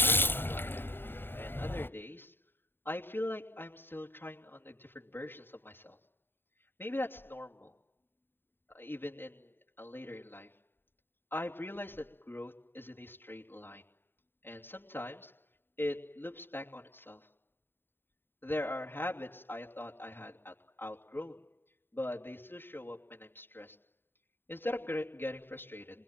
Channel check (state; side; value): late; right; 0.10 ms